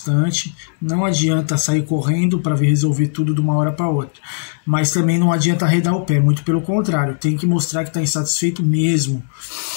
Não adianta sair correndo para resolver tudo de uma hora para outra, mas também não adianta arredar o pé, muito pelo contrário, tem que mostrar que está insatisfeito mesmo.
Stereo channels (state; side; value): silent; right; digital silence